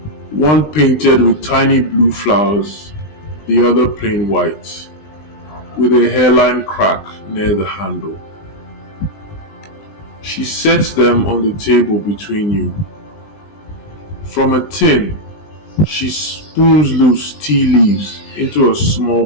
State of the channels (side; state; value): right; late; 20 ms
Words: One painted with tiny blue flowers, the other plain white, with a hairline crack near the handle. She sets them on the table between you. From a tin, she spoons loose tea leaves into a small